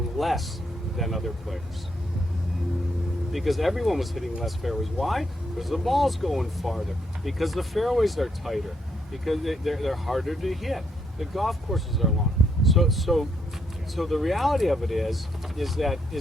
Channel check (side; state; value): both; normal; correlation 0.75